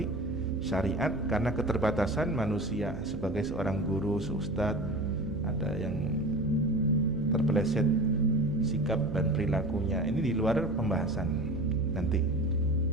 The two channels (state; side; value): noise; right; hum, 9 dB below the sound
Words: syariat karena keterbatasan manusia sebagai seorang guru, seustadz, ada yang terpeleset sikap dan perilakunya. Ini di luar pembahasan nanti.